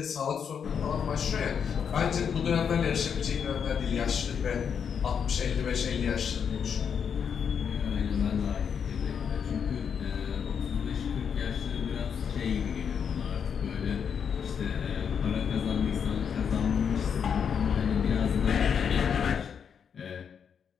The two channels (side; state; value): right; quieter; 7.2 dB